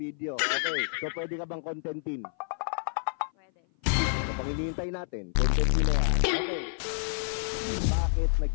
Okay, so pwede ka bang contentin? Pwede. Ano pang hinihintay natin? Contentin na yan. Okay. Bakit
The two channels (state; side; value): silent; right; 56 dB below the other